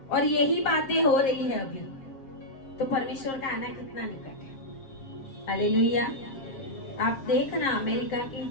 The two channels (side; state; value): right; late; 7.4 ms